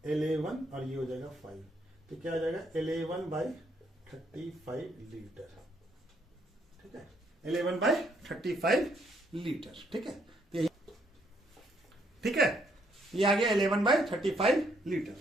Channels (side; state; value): both; normal; correlation 0.71